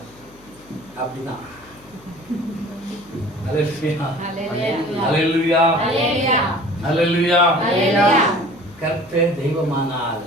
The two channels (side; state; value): left; noise; hum, 26 dB below the sound